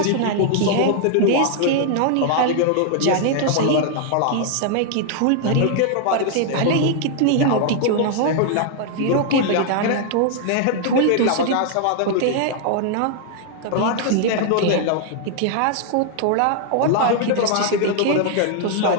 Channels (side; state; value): both; different; correlation 0.00